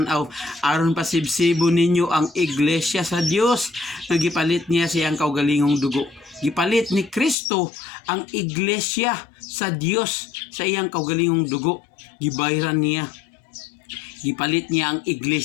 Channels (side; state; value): right; drops out; at 7.4 s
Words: aron pasibsibo ninyo ang iglesia sa Dios nga gipalit niya siyang kaugalingong dugo. Gipalit ni Kristo ang iglesia sa Dios sa iyang kaugalingong dugo. Gibayran niya. Gipalit niya ang